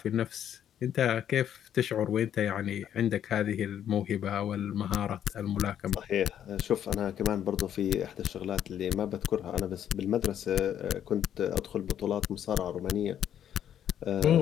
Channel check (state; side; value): quieter; right; 9.9 dB